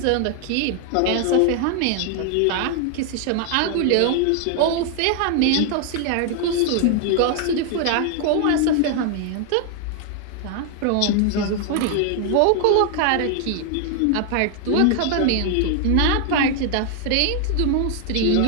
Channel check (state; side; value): different; both; correlation 0.00